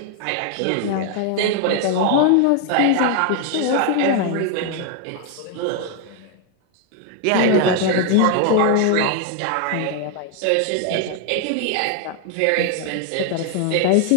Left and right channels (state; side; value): different; both; correlation 0.01